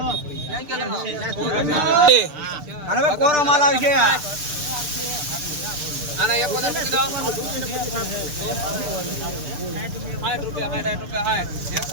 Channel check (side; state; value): left; late; 6.8 ms